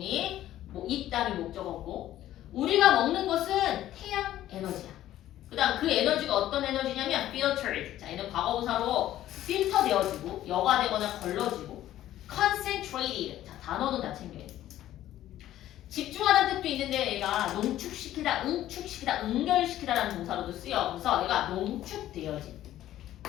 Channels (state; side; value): quieter; right; 13.2 dB